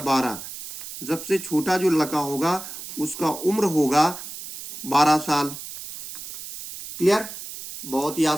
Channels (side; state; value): right; noise; hiss, 11 dB below the sound